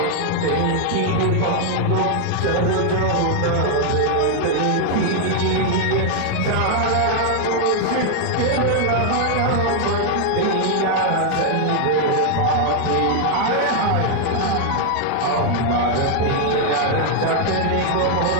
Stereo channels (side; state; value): both; different; correlation 0.00